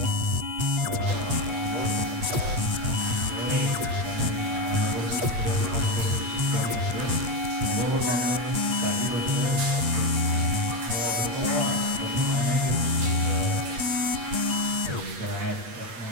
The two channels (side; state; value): left; late; 8.5 ms